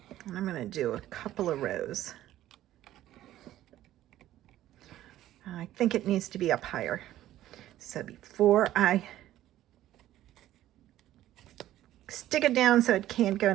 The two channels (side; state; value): left; quieter; 13.7 dB